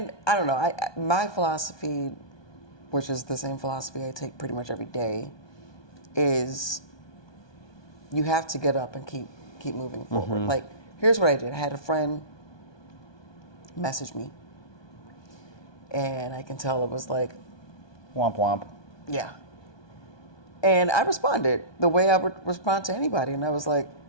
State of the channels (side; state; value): right; late; 1.2 ms